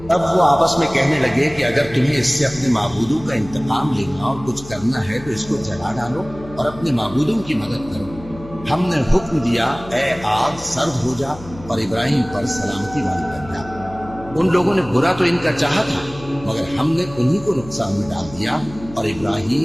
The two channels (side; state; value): left; noise; hum, 16 dB below the sound